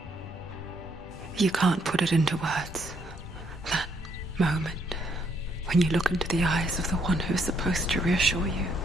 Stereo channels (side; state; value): both; normal; correlation 0.71